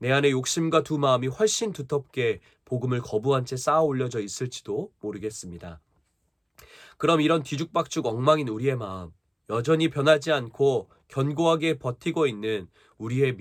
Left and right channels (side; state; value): both; identical; correlation 1.00